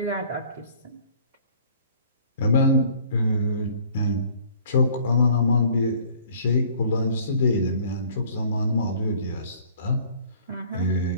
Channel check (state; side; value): inverted; both; correlation -0.54